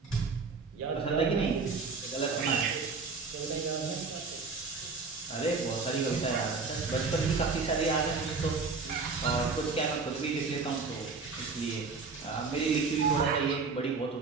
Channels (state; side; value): quieter; left; 4.5 dB